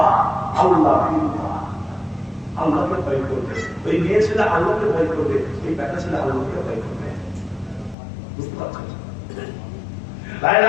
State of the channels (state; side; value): drops out; right; at 8.0 s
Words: আল্লাহ। আল্লাহকে ভয় করবে, ওই মেয়ে ছেলে আল্লাহকে ভয় করবে, ওই বেটা ছেলে আল্লাহকে ভয় করবে। বুঝতে পারছেন?